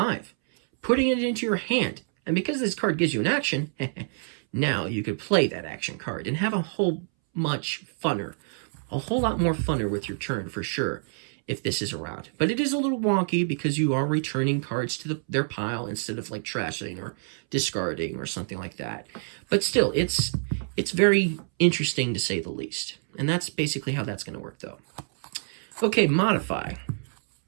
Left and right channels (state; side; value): silent; left; 60 dB below the other